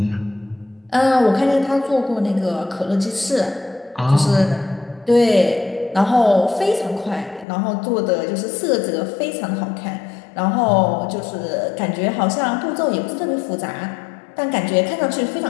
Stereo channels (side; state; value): right; drops out; at 7.5 s